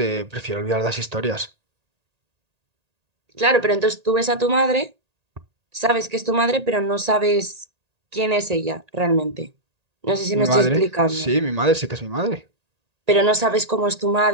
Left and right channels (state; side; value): late; left; 1.8 ms